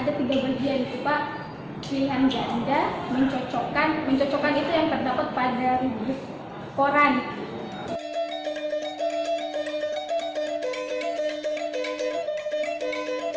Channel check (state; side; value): identical; both; correlation 1.00